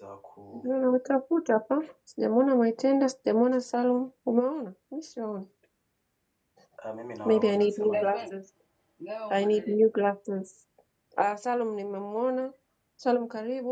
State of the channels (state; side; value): identical; both; correlation 1.00